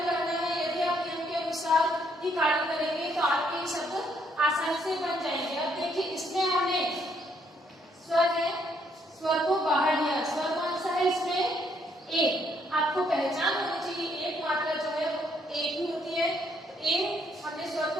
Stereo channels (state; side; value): normal; both; correlation 0.70